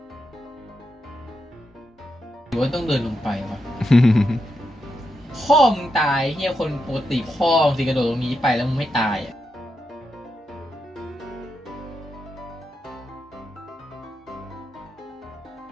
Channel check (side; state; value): both; normal; correlation 0.85